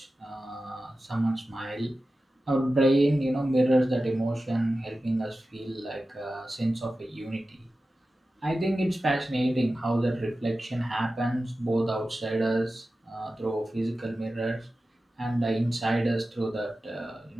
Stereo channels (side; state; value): both; normal; correlation 0.94